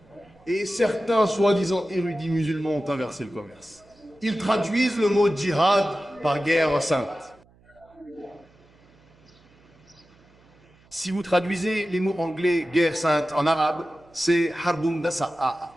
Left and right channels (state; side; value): noise; right; hum, 30 dB below the sound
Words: et certains soi-disant érudits musulmans ont inversé le commerce. Ils traduisent le mot djihad par guerre sainte. Si vous traduisez les mots anglais guerre sainte en arabe, c'est harbun dasa'a.